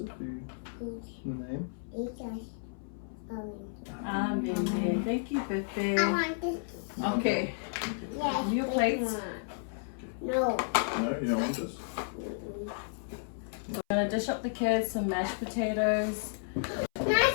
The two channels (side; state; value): right; silent; 56 dB below the other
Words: food. The name. Amen. Thank you, Pepe. I want this. Okay. Yes. Your plates. No. No, you don't want this? We're gonna dish up the kids some mashed potatoes.